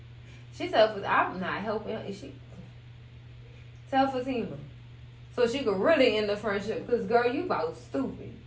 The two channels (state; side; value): identical; both; correlation 1.00